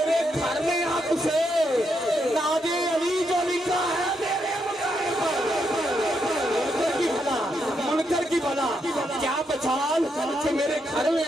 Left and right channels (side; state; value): both; normal; correlation 0.80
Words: گھر میں آپ سے ناد علی جو لکھا ہے میرے مکان پر، منکر کی بھلا کیا بچان کہ میرے گھر میں